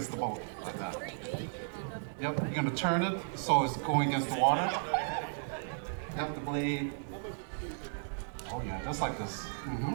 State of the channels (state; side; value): silent; left; digital silence